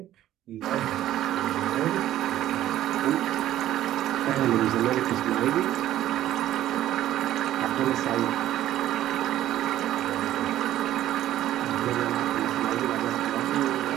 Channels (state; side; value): quieter; left; 13.1 dB